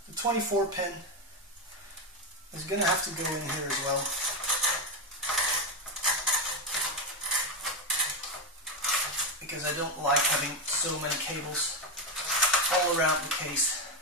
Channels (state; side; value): normal; both; correlation 0.08